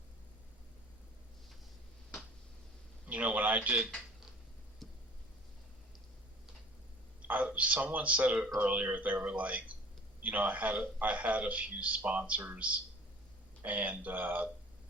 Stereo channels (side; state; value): both; normal; correlation 0.45